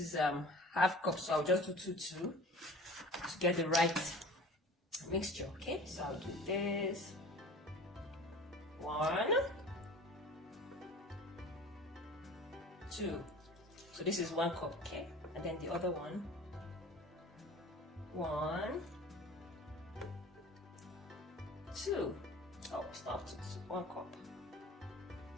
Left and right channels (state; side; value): normal; both; correlation 0.42